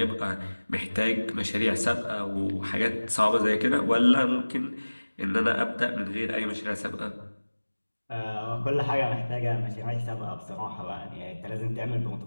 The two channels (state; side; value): inverted; both; correlation -1.00